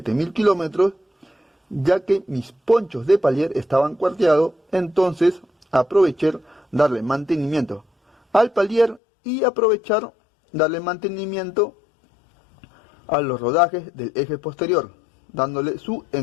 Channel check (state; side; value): drops out; right; at 9.0 s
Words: kilómetros, ya que mis ponchos de palier estaban cuarteados, entonces aproveché darle mantenimiento al palier y aprovechar darle mantenimiento a los rodajes del eje posterior, dándole su